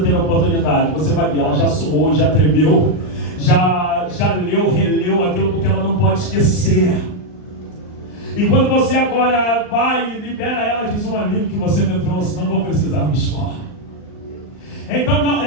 ter oportunidade, você vai ver, ela já suou, já tremeu, já leu, releu aquilo, porque ela não pode esquecer. E quando você agora vai e libera ela, diz: um alívio que você me trouxe, não vou precisar me expor. Então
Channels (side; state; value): right; late; 39 ms